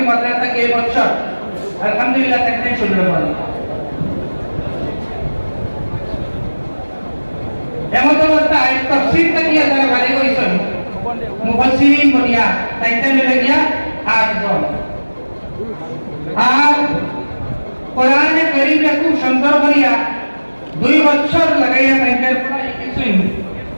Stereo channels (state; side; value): inverted; both; correlation -1.00